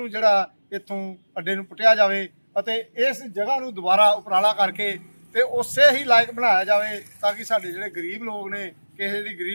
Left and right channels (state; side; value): inverted; both; correlation -1.00